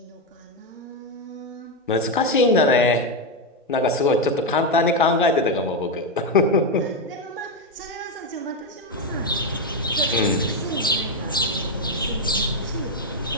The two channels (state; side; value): normal; both; correlation 0.06